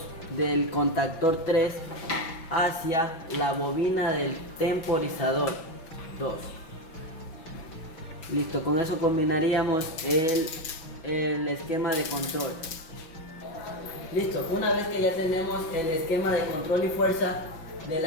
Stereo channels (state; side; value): late; right; 6.1 ms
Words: del contactor 3 hacia la bobina del temporizador 2. Listo, con eso combinaríamos el esquema de control. Listo, una vez que ya tenemos el esquema de control y fuerza del